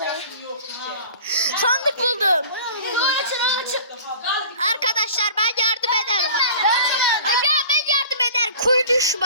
Sandık buldum. Açın. Arkadaşlar ben yardım ederim. Ya ben yardım ederim. Kuyu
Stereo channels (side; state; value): both; inverted; correlation -0.42